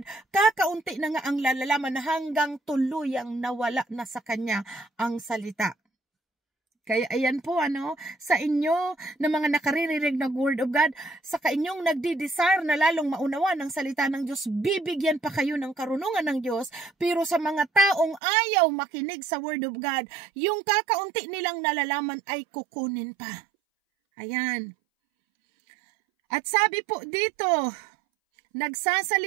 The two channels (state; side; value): drops out; left; at 18.2 s